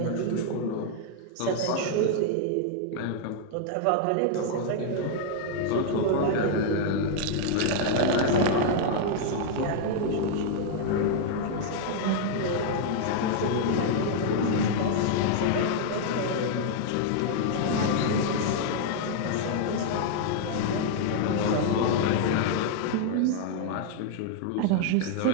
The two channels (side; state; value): both; different; correlation -0.01